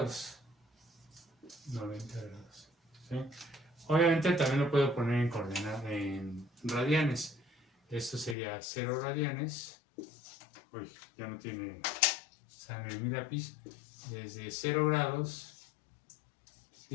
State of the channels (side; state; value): right; drops out; at 8.3 s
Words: 90 grados, ¿sí? Obviamente también lo puedo poner en coordenadas, en radianes. Esto sería 0 radianes. Uy, ya no tiene sangre en mi lápiz. Desde 0 grados,